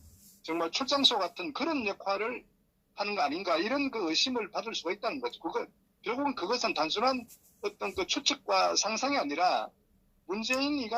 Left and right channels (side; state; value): both; identical; correlation 1.00